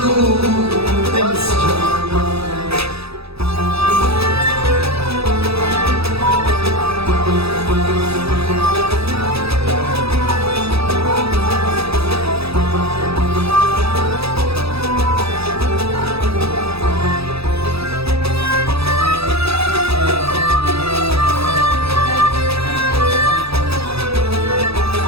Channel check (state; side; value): late; left; 0.78 ms